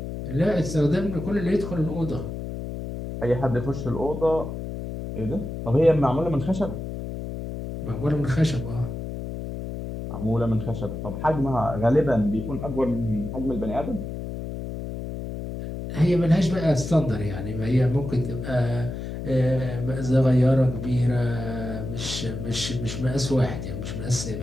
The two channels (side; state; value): left; noise; hum, 7 dB below the sound